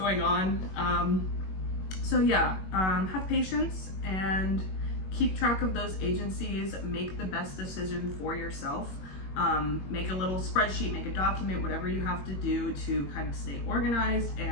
on. So yeah, have patience and keep track of those agencies, make the best decision for yourself. Make a little spreadsheet, make a document, whatever you have to do to kind of stay organized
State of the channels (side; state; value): right; late; 21 ms